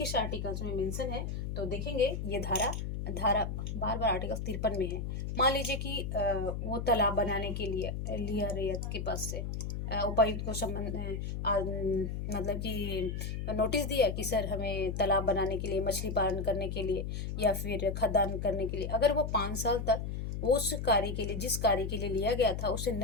आर्टिकल्स में मेंशन है, तो देखेंगे ये धारा बार बार आर्टिकल 53 में है। मान लीजिए कि वो तालाब बनाने के लिए लिया रैयत के पास से, उपायुक्त को संबंध मतलब कि नोटिस दिया कि सर हमें तालाब बनाने के लिए, मछली पालन करने के लिए या फिर खदान करने के लिए, अगर वो 5 साल तक वो उस कार्य के लिए, जिस कार्य के लिए लिया गया था उसे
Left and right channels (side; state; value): left; noise; hum, 4 dB below the sound